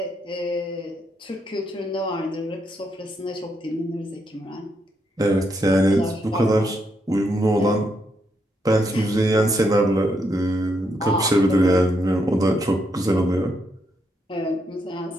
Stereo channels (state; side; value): normal; both; correlation 0.79